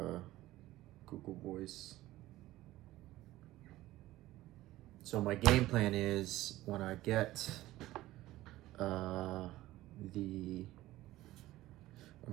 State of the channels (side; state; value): left; quieter; 16.4 dB